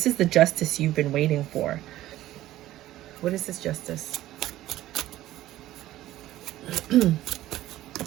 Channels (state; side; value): quieter; left; 14.7 dB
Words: is the justice you've been waiting for. What is this justice?